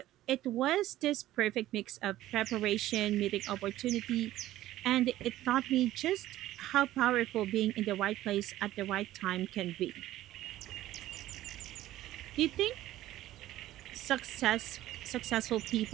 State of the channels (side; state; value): left; quieter; 14.7 dB